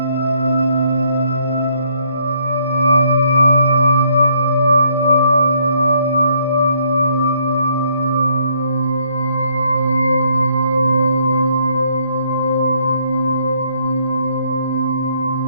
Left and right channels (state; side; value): inverted; both; correlation -0.68